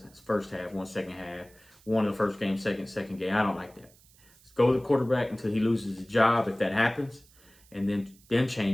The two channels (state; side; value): noise; right; hiss, 28 dB below the sound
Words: first half, one second half, one in the first game, second game. I don't like that. Let's go with the quarterback until he loses his job, if that happens, and then